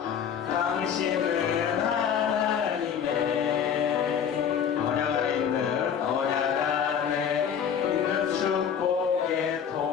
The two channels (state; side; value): quieter; right; 7.9 dB